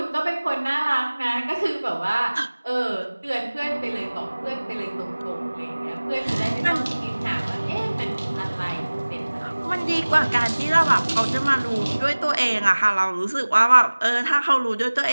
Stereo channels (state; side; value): inverted; both; correlation -1.00